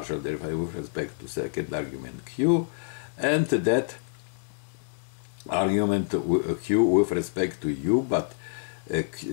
derivative with respect to second argument q, and that argument q with respect to u, but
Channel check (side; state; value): right; silent; digital silence